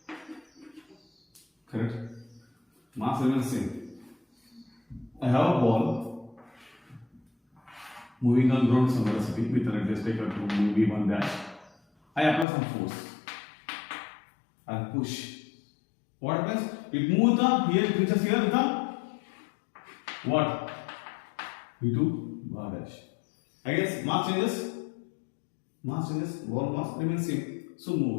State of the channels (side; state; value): right; drops out; at 12.5 s